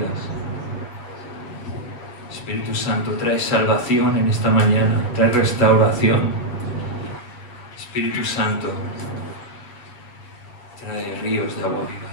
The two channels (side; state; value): right; late; 7.9 ms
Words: Espíritu Santo, trae salvación en esta mañana, trae restauración. Espíritu Santo, trae ríos de agua viva